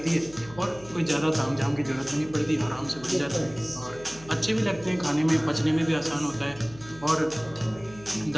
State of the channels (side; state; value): left; noise; hum, 19 dB below the sound